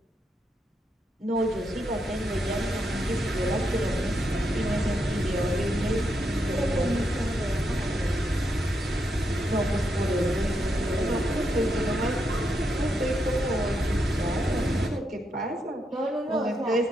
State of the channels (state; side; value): normal; both; correlation 0.81